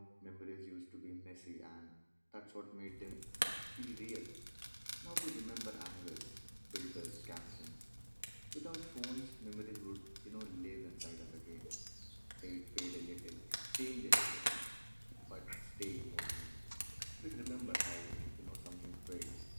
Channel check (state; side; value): inverted; both; correlation -1.00